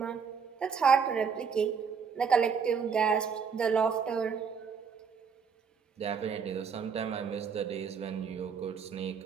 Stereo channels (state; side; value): quieter; left; 6.3 dB